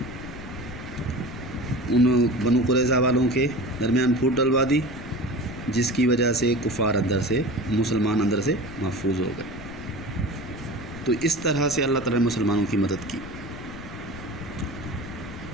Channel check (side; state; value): left; noise; rumble, 13 dB below the sound